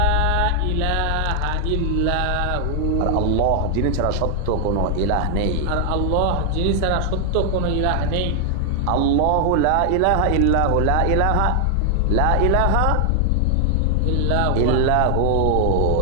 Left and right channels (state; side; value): different; both; correlation 0.00